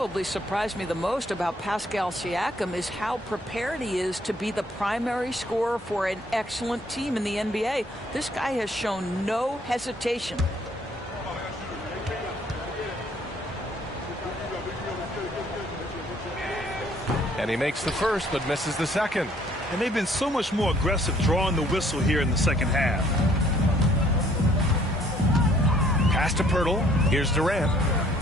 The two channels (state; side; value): normal; both; correlation 0.62